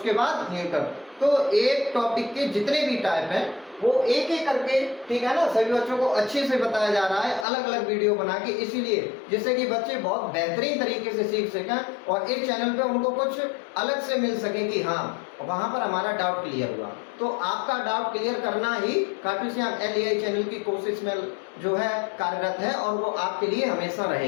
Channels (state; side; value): drops out; right; at 7.5 s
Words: बाद न्यूटर। तो एक टॉपिक के जितने भी टाइप हैं वो एक एक करके, ठीक है ना, सभी बच्चों को अच्छे से बताया जा रहा है, अलग अलग वीडियो बना के, इसीलिए जिससे कि बच्चे बहुत बेहतरीन तरीके से सीख सकें और एक चैनल पे उनको कुछ अलग से मिल सके कि हाँ वहां पर हमारा डाउट क्लियर हुआ। तो आपका डाउट क्लियर करना ही खाटू श्याम LEI चैनल की कोशिश में जो है कार्यरत है और वो आपके लिए हमेशा